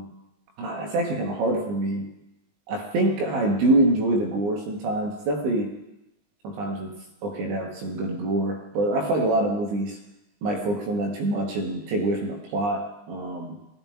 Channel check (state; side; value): late; left; 20 ms